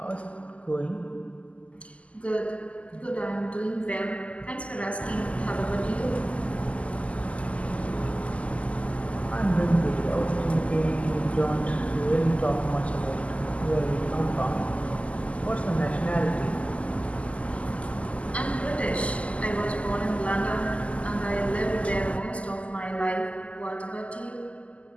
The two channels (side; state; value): right; late; 0.064 ms